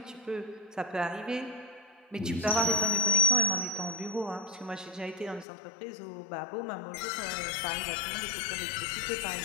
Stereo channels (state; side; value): drops out; right; at 5.5 s